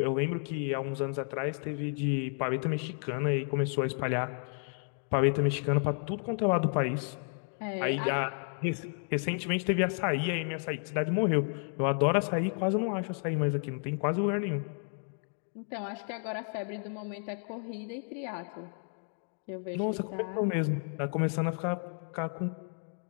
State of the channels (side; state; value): right; silent; 56 dB below the other